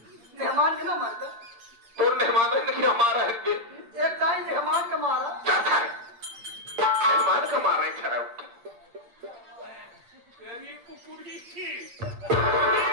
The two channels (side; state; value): left; late; 8.7 ms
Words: मेहमान के ना मर गए। तो मेहमान ने कि हमारा है बे। एक टाइम मेहमान का मारा, क्या था मेहमान का मारा है खराब। तेरी कुकुरी की